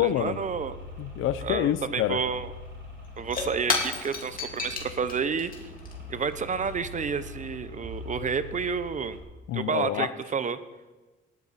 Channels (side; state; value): both; normal; correlation 0.10